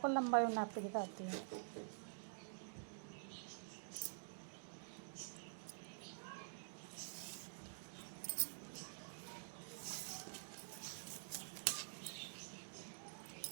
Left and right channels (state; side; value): silent; left; digital silence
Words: लंबाई और नाप के दिखाती हूँ।